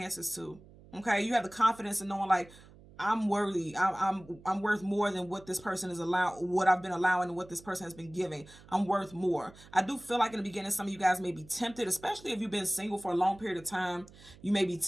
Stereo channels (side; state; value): right; noise; hum, 22 dB below the sound